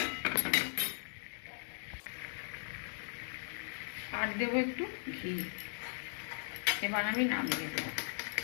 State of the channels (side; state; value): right; silent; digital silence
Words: আর দেবো একটু ঘি। এবার আমি নামিয়ে দেবো।